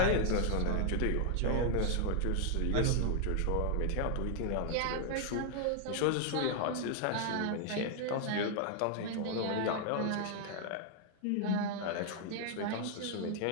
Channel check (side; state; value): both; different; correlation 0.00